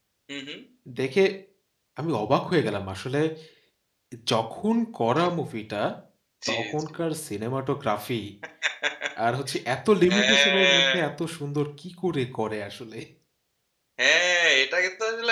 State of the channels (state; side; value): identical; both; correlation 1.00